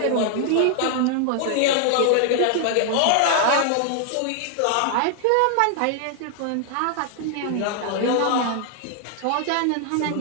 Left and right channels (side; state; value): both; different; correlation 0.00